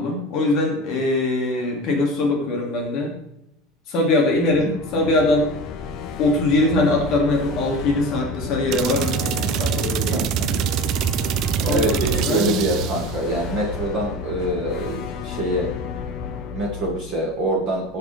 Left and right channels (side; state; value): both; normal; correlation 0.32